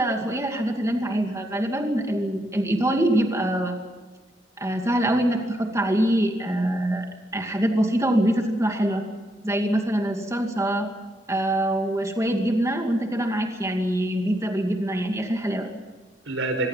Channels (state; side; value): normal; both; correlation 0.78